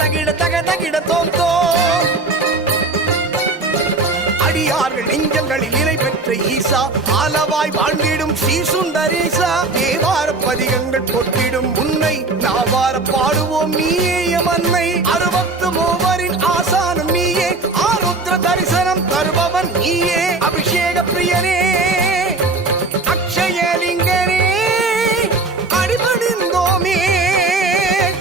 தக தகிட தோம் தோம். அடியார்கள் நெஞ்சங்களில் நிலை பெற்ற ஈசா, ஆலவாய் வாழ்ந்திடும் ஸ்ரீ சுந்தரேசா. தேவார பதிகங்கள் போற்றிடும் உன்னை நாவார பாடுவோம் நீயே எமன்னை. 63 ஆசானும் நீயே, ஆருத்ர தரிசனம் தருபவன் நீயே. அபிஷேக பிரியனே அக்ஷயலிங்கனே அடிபணிந்தோமே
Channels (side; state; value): left; quieter; 3.5 dB